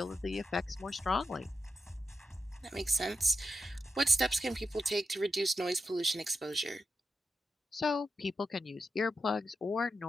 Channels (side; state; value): both; normal; correlation 0.87